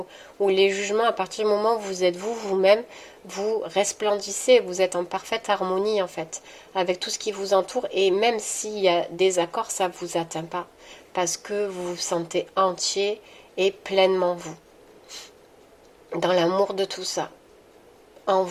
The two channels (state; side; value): identical; both; correlation 1.00